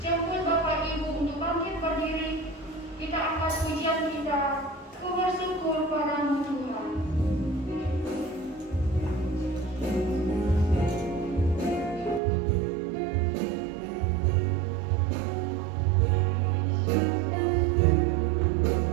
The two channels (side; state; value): left; drops out; at 12.2 s